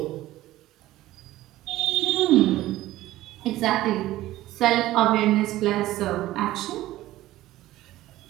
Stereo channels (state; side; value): quieter; left; 15.7 dB